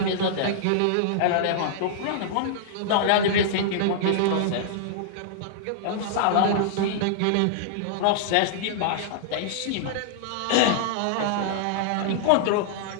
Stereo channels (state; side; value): different; both; correlation -0.01